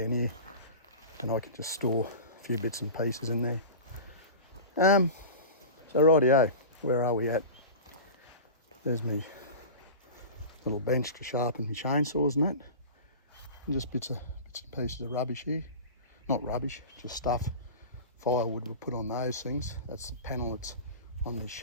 here, and I can just store a few bits and pieces in there. So rightio, where are we at? There's me little bench to sharpen my chainsaws and that. And just bits and pieces of rubbish here. Not rubbish, just stuff. Firewood we'll put on those things. That's the panel that's on this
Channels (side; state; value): both; inverted; correlation -0.32